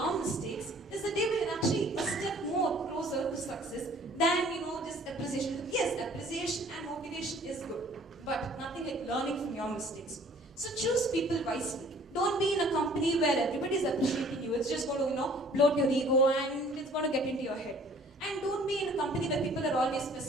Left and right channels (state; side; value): normal; both; correlation 0.54